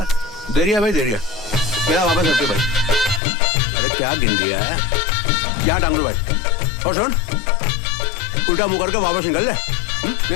रही है भाई, दे रही है। मेरा वापस रख भाई। अरे क्या गिन दिया है क्या डांगरू भाई? और सुन उल्टा मुंह करके वापस निकल जाए।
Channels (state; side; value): drops out; right; at 3.2 s